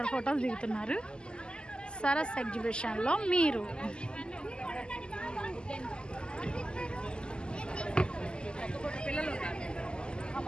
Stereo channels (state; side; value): late; right; 0.048 ms